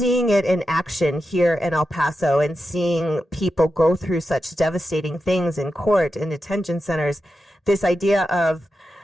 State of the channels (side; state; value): both; normal; correlation 0.89